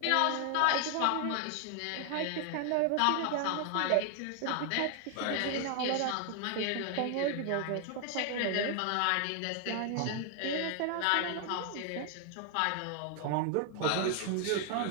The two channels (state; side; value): different; both; correlation 0.00